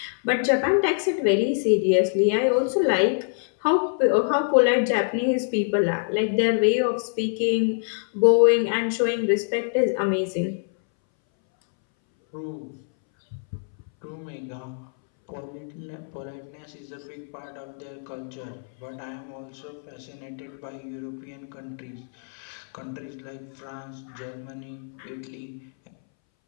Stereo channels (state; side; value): silent; right; 61 dB below the other